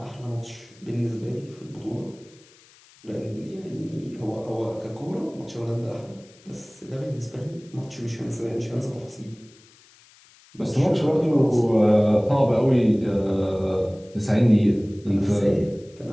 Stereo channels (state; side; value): noise; left; hiss, 27 dB below the sound